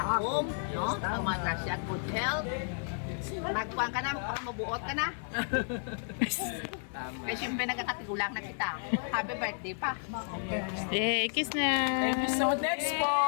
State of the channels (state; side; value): silent; right; 56 dB below the other